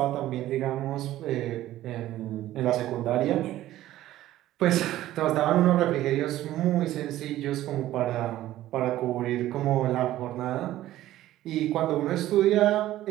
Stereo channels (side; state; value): left; quieter; 14.4 dB